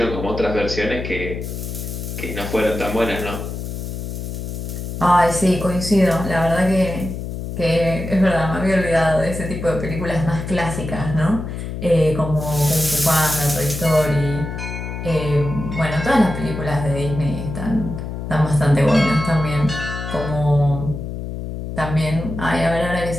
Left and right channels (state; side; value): noise; left; hum, 6 dB below the sound